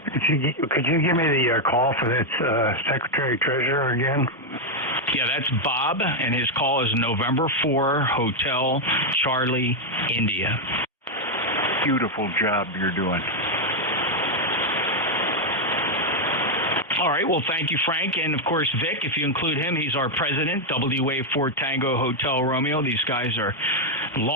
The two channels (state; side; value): normal; both; correlation 0.01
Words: Could you give me the call for that Secretary-Treasurer again? Yeah, that's Bob, and his call is November 4, Hotel Charlie, India. Beautiful job you're doing. All right. Well, thank you, Frank. And, of course, Vic, if you include him, he's our president, WA4 Tango Hotel Romeo. These guys are